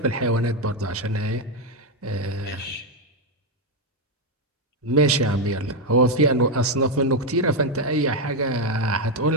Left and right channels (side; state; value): both; normal; correlation 0.04